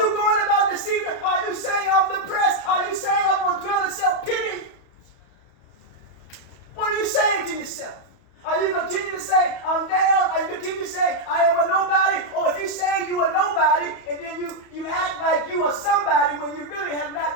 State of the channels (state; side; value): late; right; 31 ms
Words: going about deceiving? Are you saying I'm depressed? Are you saying I'm going to dwell in self-pity? What are you saying to yourself? Are you continue to say I'm down? Are you continue to say I am a nobody? Or if you say you are nobody and then you act like you are somebody when you really have